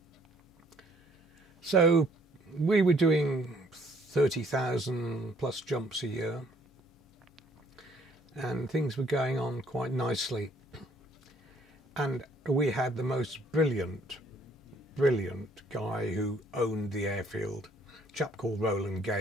So we were doing 30,000 plus jumps a year, and things were going on quite nicely. And we had the most brilliant guy who owned the airfield, a chap called Roland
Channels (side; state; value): both; normal; correlation 0.63